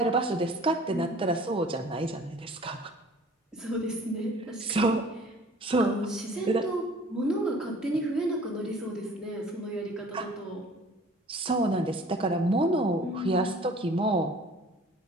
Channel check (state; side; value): normal; both; correlation 0.50